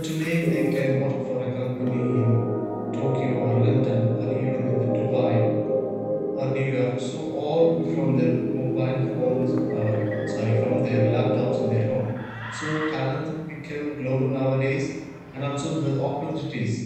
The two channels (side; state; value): both; identical; correlation 1.00